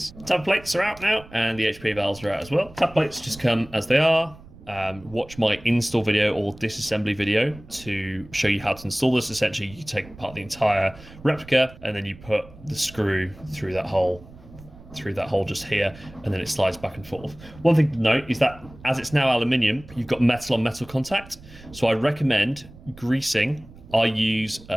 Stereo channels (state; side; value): noise; right; rumble, 20 dB below the sound